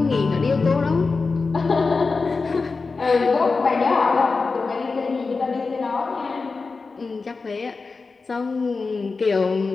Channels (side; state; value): right; quieter; 4.2 dB